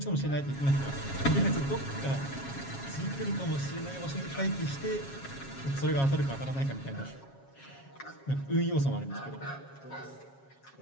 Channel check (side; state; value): right; late; 7.3 ms